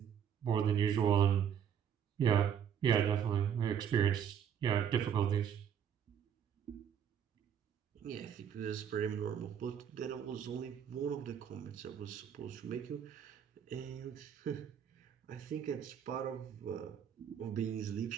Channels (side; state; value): left; quieter; 8.5 dB